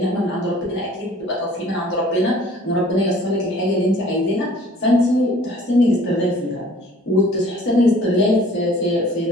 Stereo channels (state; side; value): normal; both; correlation 0.52